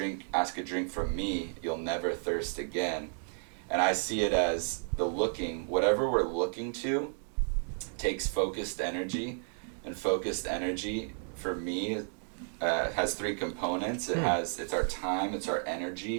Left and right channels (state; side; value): silent; left; 56 dB below the other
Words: ask a drink from me, you'll never thirst again. And I see it as whatever we're looking to takes focused energy, and focused energy for me has three components. It's our time, it's our